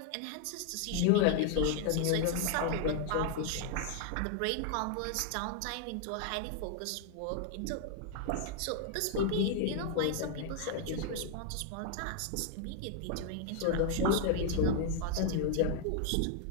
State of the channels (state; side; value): different; both; correlation 0.00